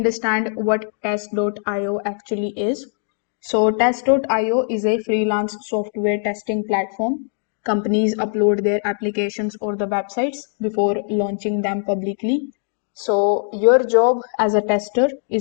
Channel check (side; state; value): right; silent; digital silence